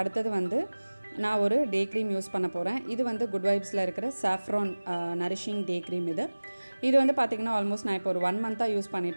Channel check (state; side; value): inverted; both; correlation -1.00